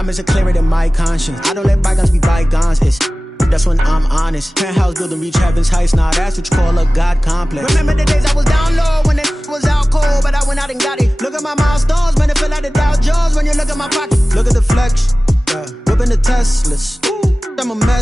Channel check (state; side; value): normal; both; correlation 0.97